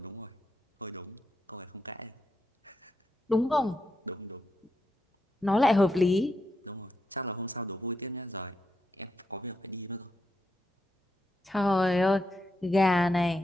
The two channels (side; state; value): both; normal; correlation 0.83